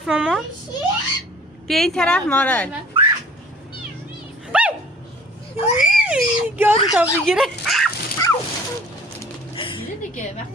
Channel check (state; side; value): normal; both; correlation 0.50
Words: ماما. بیا این طرف مارال. گاز تا بگیره.